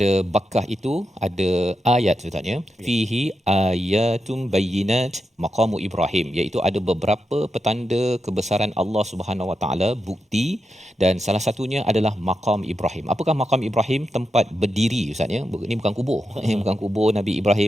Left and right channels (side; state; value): both; normal; correlation 0.87